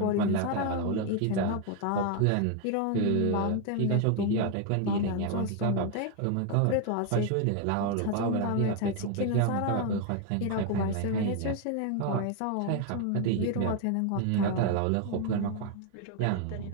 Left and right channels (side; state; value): both; different; correlation 0.01